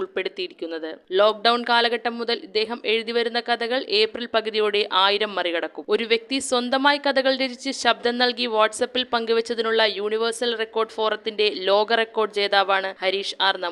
ലോക്ക്ഡൌൺ കാലഘട്ടം മുതൽ ഇദ്ദേഹം എഴുതിവരുന്ന കഥകൾ ഏപ്രിൽ പകുതിയോടെ 1000 മറികടക്കും. ഒരു വ്യക്തി സ്വന്തമായി കഥകൾ രചിച്ച് ശബ്ദം നൽകി വാട്സപ്പിൽ പങ്കുവച്ചതിനുള്ള യൂണിവേഴ്സൽ റെക്കോർഡ് ഫോറത്തിന്റെ ലോക റെക്കോർഡ് ജേതാവാണ് ഹരീഷ് ആർ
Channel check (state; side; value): identical; both; correlation 1.00